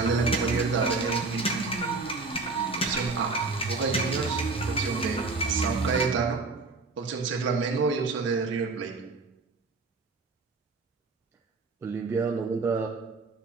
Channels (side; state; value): left; quieter; 3.9 dB